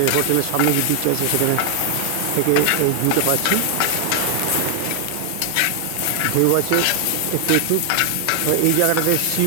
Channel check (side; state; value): both; different; correlation 0.00